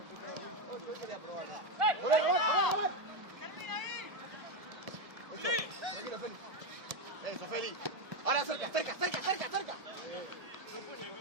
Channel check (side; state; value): left; late; 1.7 ms